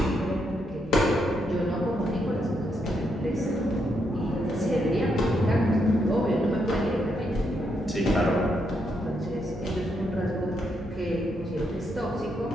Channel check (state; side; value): normal; both; correlation 0.79